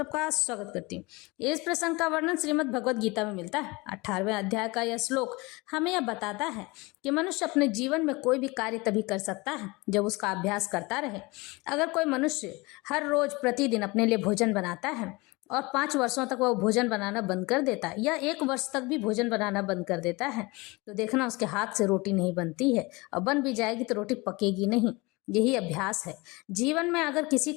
स्वागत करती हूँ। इस प्रसंग का वर्णन श्रीमद् भगवद गीता में मिलता है। 18वें अध्याय का यह श्लोक हमें यह बताता है कि मनुष्य अपने जीवन में कोई भी कार्य तभी कर सकता है जब उसका अभ्यास करता रहे। अगर कोई मनुष्य हर रोज प्रतिदिन अपने लिए भोजन बनाता है और 5 वर्षों तक वह भोजन बनाना बंद कर देता है या 1 वर्ष तक भी भोजन बनाना बंद कर देता है, तो देखना उसके हाथ से रोटी नहीं बनती है, और बन भी जाएगी तो रोटी पकेगी नहीं। यही अभ्यास है। जीवन में अगर किसी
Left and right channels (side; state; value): right; quieter; 24.5 dB